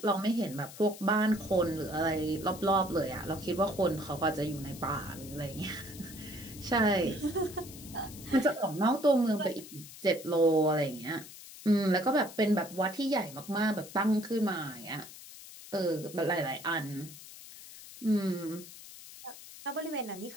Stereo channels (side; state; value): left; noise; hiss, 16 dB below the sound